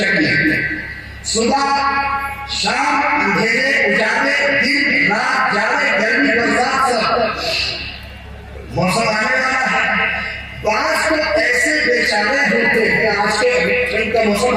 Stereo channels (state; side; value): identical; both; correlation 1.00